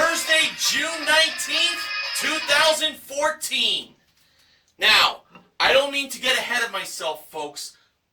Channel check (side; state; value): both; identical; correlation 1.00